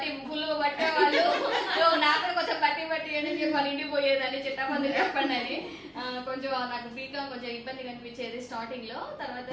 ఫుల్ పట్టేవాళ్ళు, నాకు కొంచెం బట్టి అని చెప్పి వాళ్ళ ఇంటికి పోయేదాన్ని. చిట్టపదులు చెప్పండి అని కొంచెం నాకు బీకామ్ కొంచెం ఇబ్బంది కనిపించేది స్టార్టింగ్ లో. తర్వాత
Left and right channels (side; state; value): both; identical; correlation 1.00